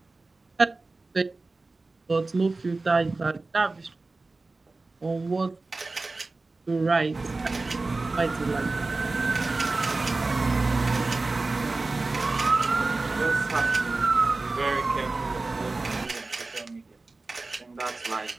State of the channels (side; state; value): left; quieter; 3.4 dB